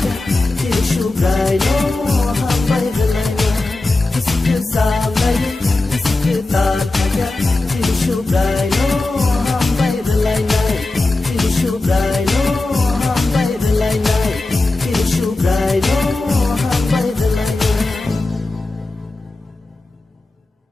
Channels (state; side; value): quieter; right; 3.1 dB